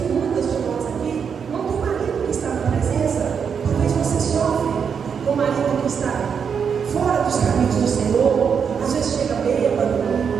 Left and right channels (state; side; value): quieter; left; 6.8 dB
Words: muitas de nós aqui não tem marido que está na presença. Talvez você sofre com o marido que está fora dos caminhos do Senhor. Às vezes chega bêbado.